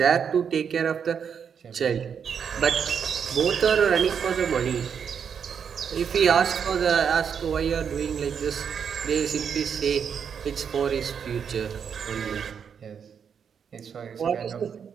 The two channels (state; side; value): quieter; left; 7.2 dB